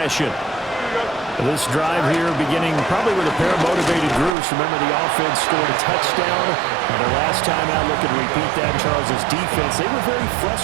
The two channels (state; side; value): drops out; left; at 4.3 s